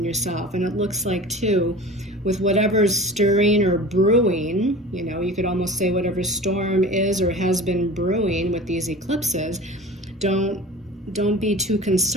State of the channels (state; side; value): normal; both; correlation 0.37